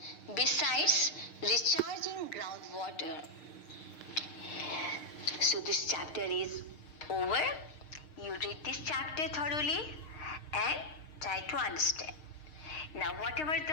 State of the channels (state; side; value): late; right; 6.5 ms